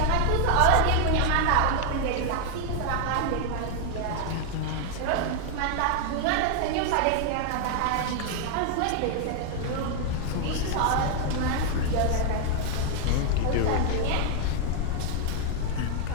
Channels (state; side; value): different; both; correlation 0.00